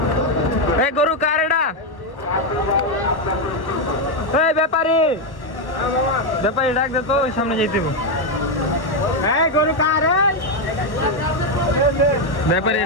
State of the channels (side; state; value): right; late; 1.1 ms